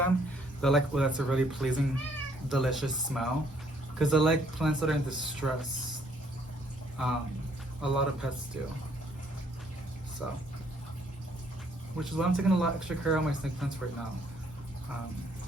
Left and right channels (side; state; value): both; normal; correlation 0.66